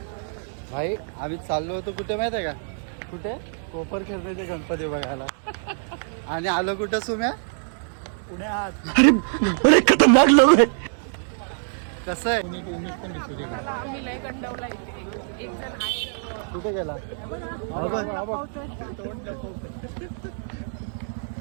भाई आम्ही चाललो होतो कुठे माहिती आहे का? कुठे? कोपर खेळण्याचे गणपती बघायला. आणि आलो कुठं सुम्या? पुण्यात. अरे खतरनाक लोक आहे. कसं आहे? आम्ही लय गंडवला इथे. एक जण आहे. कुठे गेला?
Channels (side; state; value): left; silent; digital silence